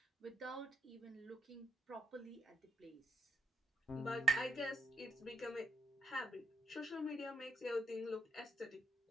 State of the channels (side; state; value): both; normal; correlation 0.76